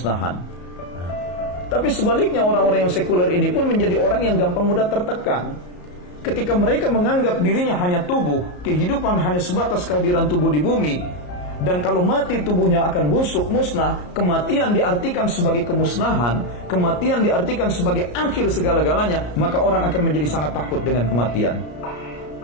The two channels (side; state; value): right; late; 34 ms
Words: Nah, tapi sebaliknya orang-orang yang sekuler ini pun menjadi orang yang gampang mudah tertekan. Ketika mereka menganggap dirinya hanya tubuh, kehidupan hanya sebatas kehadiran tubuh di bumi, dan kalau mati tubuhnya akan busuk, musnah, kematian diartikan sebagai kemusnahan, kematian diartikan sebagai akhir segala-galanya, maka orang akan menjadi sangat takut dengan kematian.